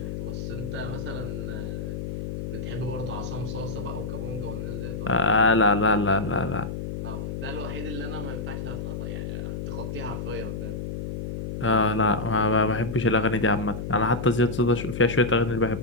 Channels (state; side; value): noise; left; hum, 5 dB below the sound